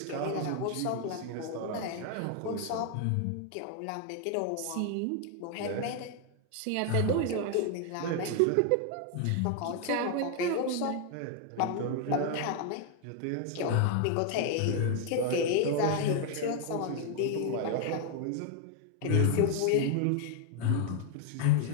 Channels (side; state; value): both; different; correlation 0.00